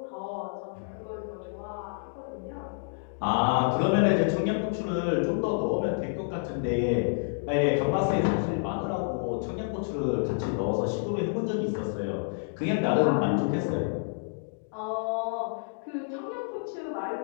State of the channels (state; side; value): silent; right; digital silence